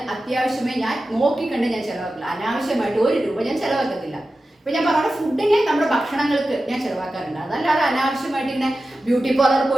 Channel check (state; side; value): normal; both; correlation 0.93